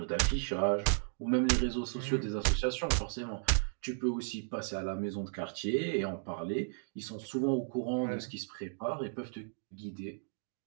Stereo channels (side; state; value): left; silent; digital silence